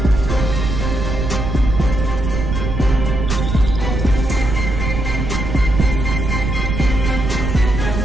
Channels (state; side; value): noise; right; rumble, 2 dB below the sound